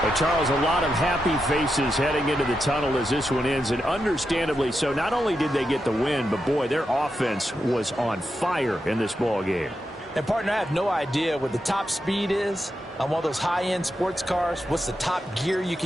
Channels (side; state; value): both; normal; correlation 0.86